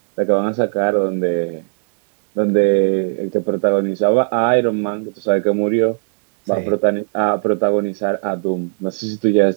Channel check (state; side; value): silent; left; digital silence